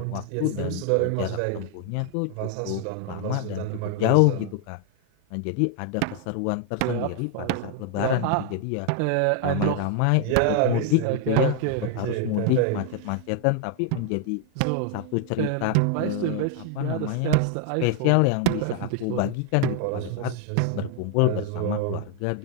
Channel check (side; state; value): both; different; correlation 0.00